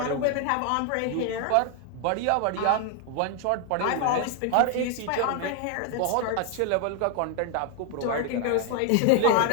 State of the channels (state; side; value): different; both; correlation 0.01